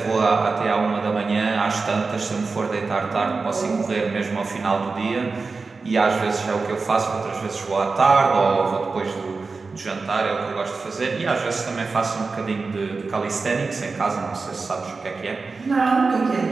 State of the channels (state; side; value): quieter; left; 4.2 dB